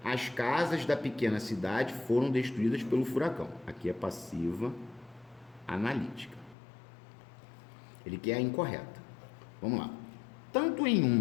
As casas da pequena cidade foram destruídas pelo furacão. Aqui é passiva analítica. Ele quer a incorreta. Vamos lá. Tanto em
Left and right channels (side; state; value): right; drops out; at 6.6 s